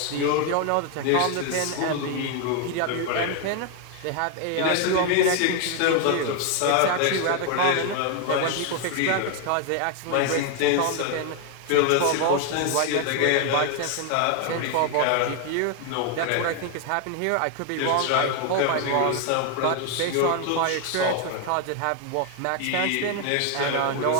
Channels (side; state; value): both; different; correlation 0.01